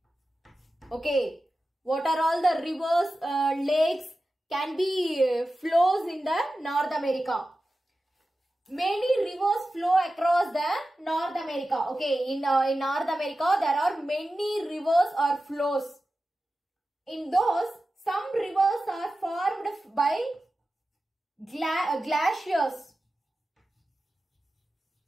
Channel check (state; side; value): normal; both; correlation 0.94